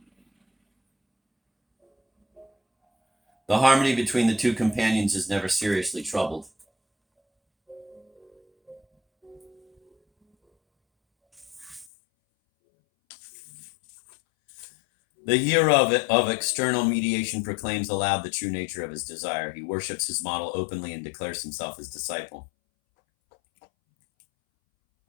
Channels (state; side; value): drops out; right; at 11.9 s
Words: The harmony between the two companions is never seriously troubled. The hero of external mediation proclaims aloud the true nature of his desire. He worships his model openly and declares himself his disciple.